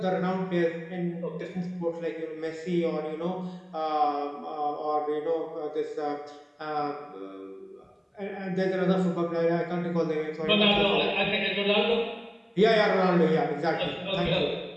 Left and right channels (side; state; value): both; identical; correlation 1.00